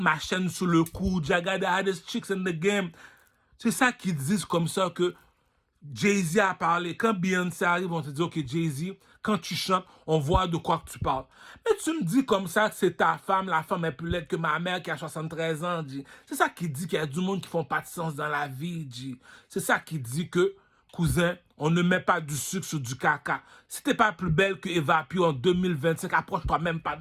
chaîne sous le cou, Jaga the hottest chicks in the game, c'est ça qu'ils disent comme ça que Jay-Z a parlé. Quand Beyoncé arrive, on te dit, OK, Jay-Z, quand tu chantes, on voit de quoi que tu parles. Mais tu me dis comme ça que c'est ta femme, la femme est plus laide que ma mère qui a 73 ans, G. C'est ça qui dit qu'il y a du monde qui font pas de sens dans la vie, G. C'est ça qui dit que, cousin, on ne met pas du sucre sur du caca. Si t'es pas plus belle que Eva Pio en 2025, approche-toi même pas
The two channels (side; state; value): both; identical; correlation 1.00